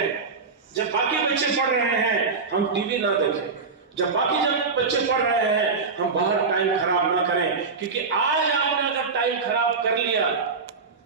जब बाकी बच्चे पढ़ रहे हैं, हम टीवी ना देखें। जब बच्चे पढ़ रहे हैं, हम बाहर टाइम खराब ना करें, क्योंकि आज आपने अगर टाइम खराब कर लिया,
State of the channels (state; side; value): quieter; left; 4.7 dB